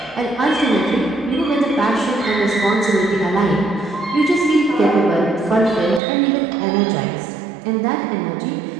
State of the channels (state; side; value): drops out; left; at 6.0 s